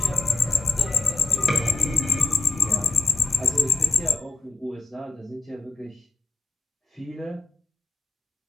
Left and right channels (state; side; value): quieter; right; 3.8 dB